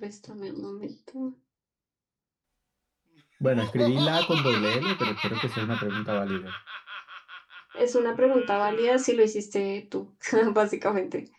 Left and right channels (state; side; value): identical; both; correlation 1.00